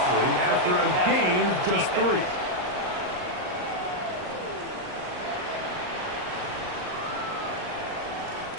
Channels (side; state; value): left; late; 39 ms